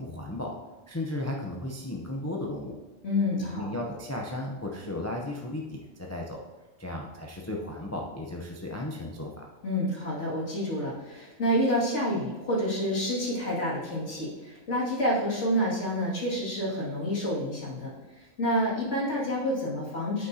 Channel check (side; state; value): both; normal; correlation -0.05